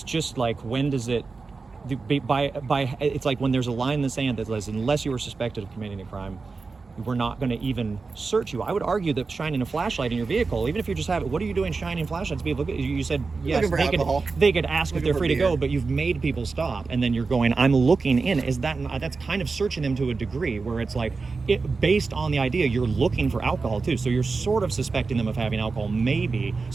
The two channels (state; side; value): quieter; left; 4.3 dB